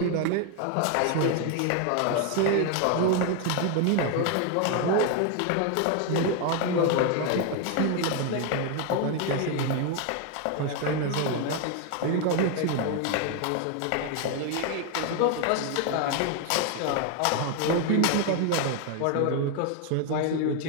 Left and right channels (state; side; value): different; both; correlation 0.01